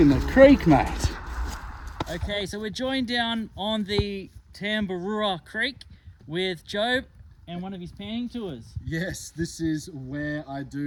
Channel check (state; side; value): identical; both; correlation 1.00